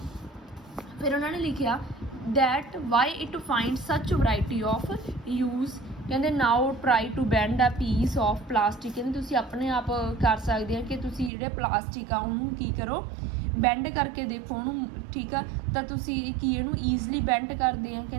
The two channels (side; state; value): left; drops out; at 11.3 s